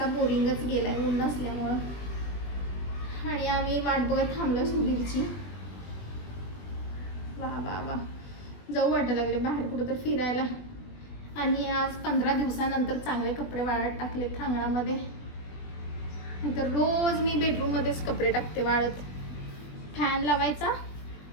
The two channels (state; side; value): late; right; 20 ms